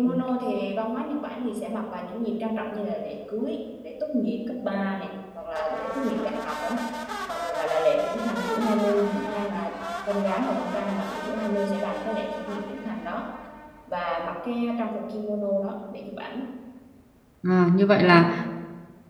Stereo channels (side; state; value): both; identical; correlation 1.00